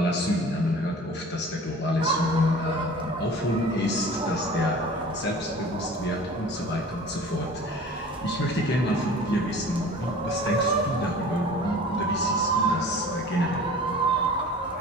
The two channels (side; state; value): both; normal; correlation 0.43